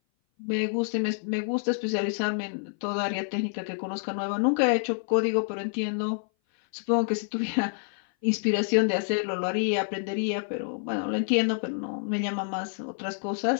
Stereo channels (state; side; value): silent; right; 57 dB below the other